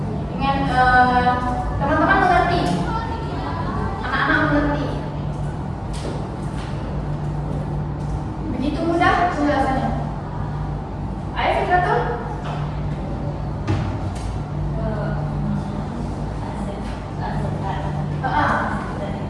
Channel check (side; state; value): both; identical; correlation 1.00